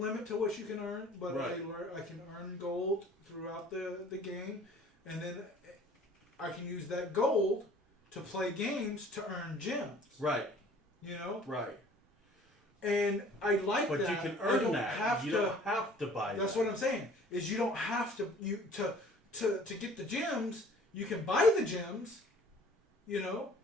to what you can earn, but I can earn gold throughout the game, and then I can use that gold to play games to earn gems. Right. Right. And I like but that. But you can earn that. You don't have to buy That's that. what I'm saying. Is you don't have to to get the gems. You can buy the gems,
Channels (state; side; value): normal; both; correlation 0.52